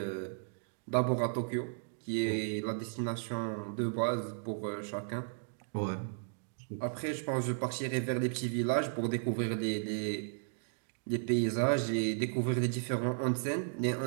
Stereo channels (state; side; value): silent; left; digital silence